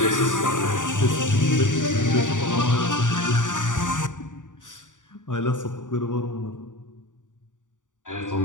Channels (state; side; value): late; right; 0.87 ms